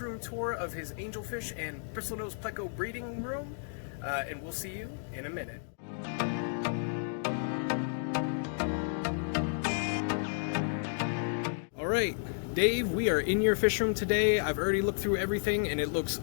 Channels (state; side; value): silent; right; digital silence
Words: tour of his angelfish and Bristlenose Pleco breeding room, and we'll see you in a minute. Alright, Dave, we are in your fish room today. I've already looked through everything and it looks